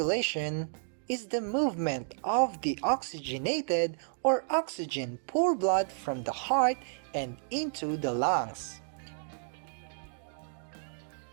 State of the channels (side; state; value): left; silent; 57 dB below the other